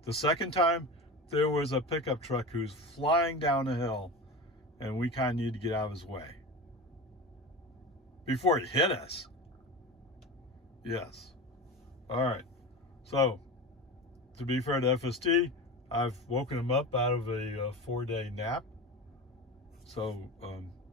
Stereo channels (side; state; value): both; normal; correlation 0.28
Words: The second time, there was a pickup truck who's flying down a hill, and we kind of need to get out of his way before he hit us. Yes. All right. So, to be fair to FSD, I've woken him up out of a 4-day nap. So,